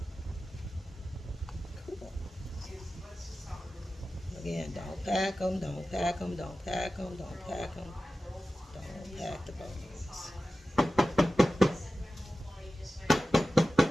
Cool. Again, don't pack them, don't pack them, don't pack them, don't pack them. Don't pack the bones.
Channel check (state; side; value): normal; both; correlation 0.95